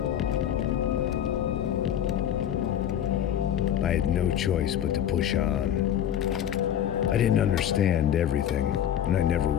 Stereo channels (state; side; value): quieter; right; 10.2 dB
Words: I had no choice but to push on. I didn't understand everything, and I never